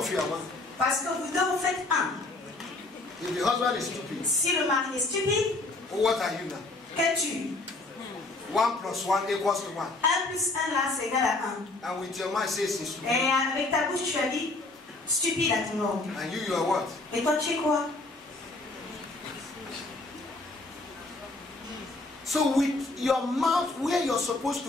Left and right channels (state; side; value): quieter; right; 3.1 dB